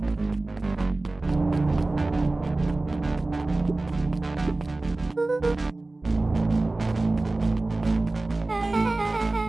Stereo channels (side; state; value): left; quieter; 3.0 dB